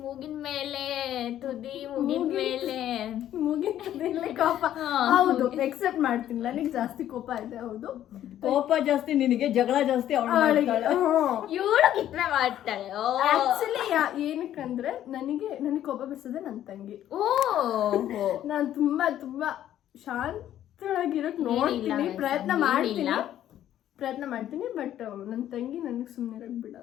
ಮೂಗಿನ ಮೇಲೆ ತುದಿ ಮುಗಿನ ಮೇಲೆ ಕೋಪ ಹೌದು ಎಕ್ಸೆಪ್ಟ್ ಮಾಡ್ತೀನಿ ನನಗೆ ಜಾಸ್ತಿ ಕೋಪ ಇದೆ ಹೌದು ಕೋಪ ಜಾಸ್ತಿ ನಿನಗೆ ಜಗಳ ಜಾಸ್ತಿ ಅವಳಿಗೆ ಇವಳು ಕಿತ್ನೆ ಮಾಡ್ತಾಳೆ ಆಕ್ಚುಲಿ ಏನಕ್ಕಂದ್ರೆ ನನಗೆ ಕೋಪ ಬಿಡಿಸೋದೆ ನನ್ನ ತಂಗಿ ನಾನು ತುಂಬಾ ಶಾಂತಳಾಗಿರೋಕ್ ನೋಡ್ತೀನಿ ಪ್ರಯತ್ನ ಮಾಡ್ತೀನಿ ಬಟ್ ನನ್ನ ತಂಗಿ ನನಗೆ ಸುಮ್ಮನೆ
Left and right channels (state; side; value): quieter; right; 11.7 dB